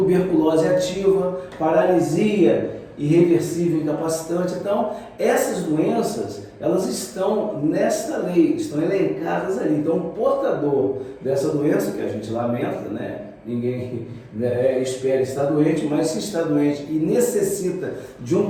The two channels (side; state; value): both; identical; correlation 1.00